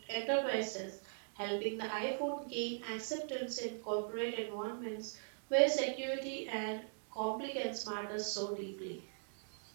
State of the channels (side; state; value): left; silent; digital silence